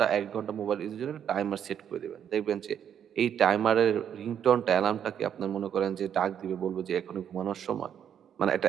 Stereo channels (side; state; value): left; quieter; 8.9 dB